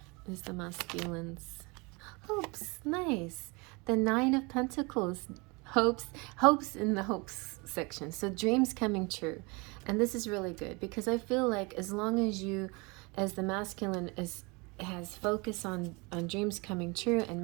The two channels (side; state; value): left; quieter; 27.9 dB